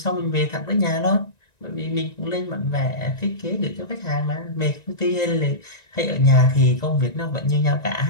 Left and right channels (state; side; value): late; right; 1.9 ms